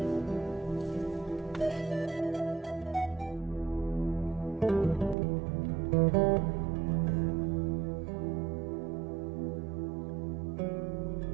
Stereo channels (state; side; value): drops out; left; at 5.2 s